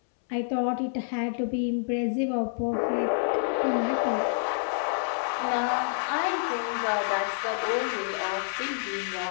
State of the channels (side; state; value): right; silent; 59 dB below the other